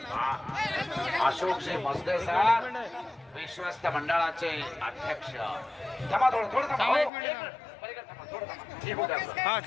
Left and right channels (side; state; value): right; drops out; at 7.1 s